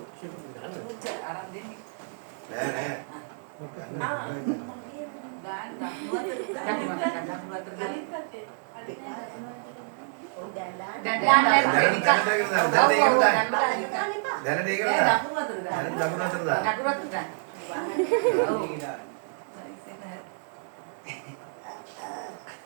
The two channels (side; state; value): left; silent; digital silence